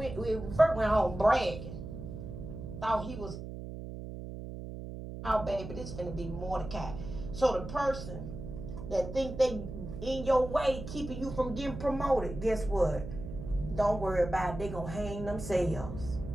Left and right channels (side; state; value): right; noise; hum, 9 dB below the sound